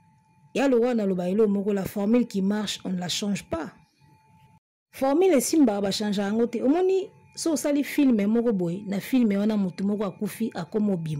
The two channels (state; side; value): identical; both; correlation 1.00